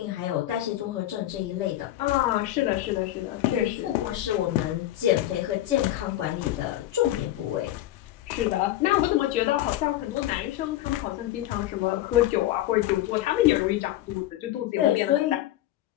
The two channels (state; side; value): quieter; right; 14.2 dB